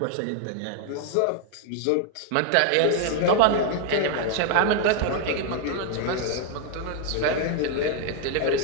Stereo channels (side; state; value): both; different; correlation 0.00